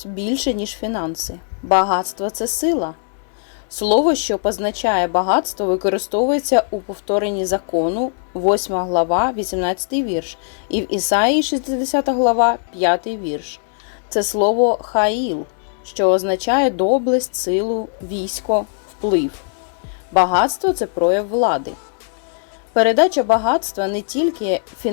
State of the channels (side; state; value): right; silent; 66 dB below the other